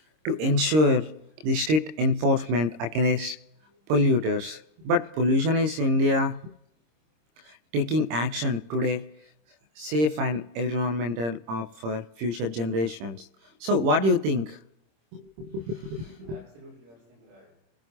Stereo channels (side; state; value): left; late; 26 ms